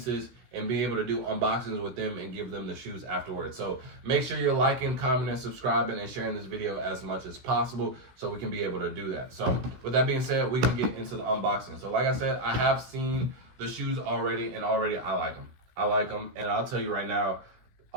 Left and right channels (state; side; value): late; left; 16 ms